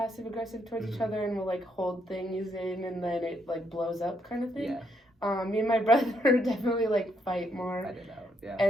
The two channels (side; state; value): both; normal; correlation 0.75